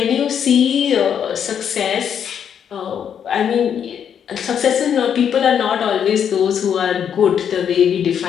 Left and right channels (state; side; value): quieter; right; 8.3 dB